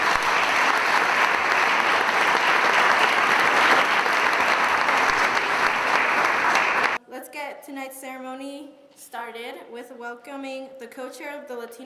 Let's get tonight's ceremony started with welcoming the co-chair of the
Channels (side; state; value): both; identical; correlation 1.00